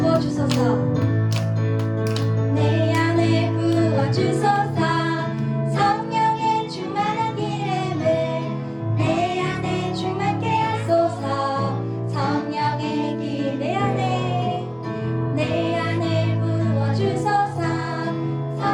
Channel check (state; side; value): identical; both; correlation 1.00